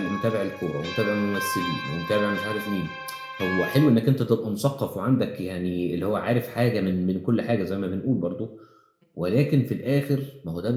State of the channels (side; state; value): both; identical; correlation 1.00